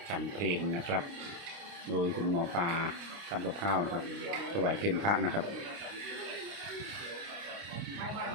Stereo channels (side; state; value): left; late; 29 ms